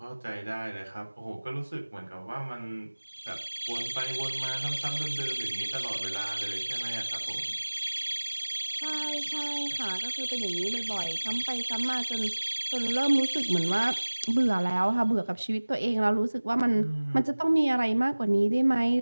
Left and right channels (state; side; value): inverted; both; correlation -1.00